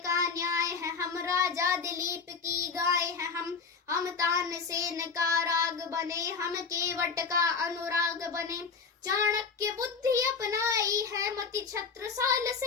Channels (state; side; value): quieter; right; 5.3 dB